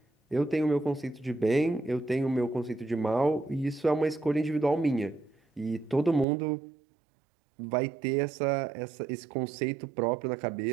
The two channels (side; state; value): left; drops out; at 6.2 s